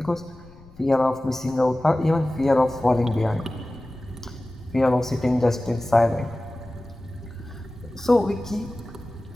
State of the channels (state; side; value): noise; left; rumble, 22 dB below the sound